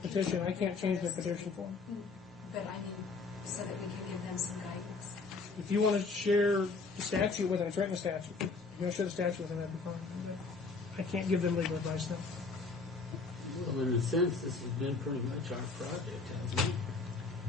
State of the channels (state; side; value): quieter; right; 4.1 dB